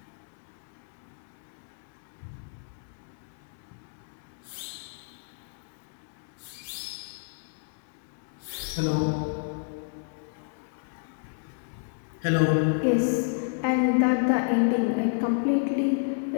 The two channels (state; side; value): silent; right; digital silence